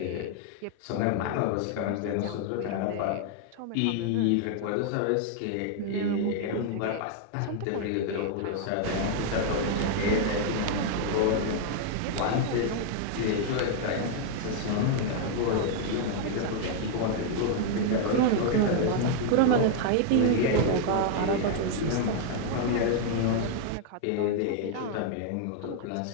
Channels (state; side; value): different; both; correlation 0.00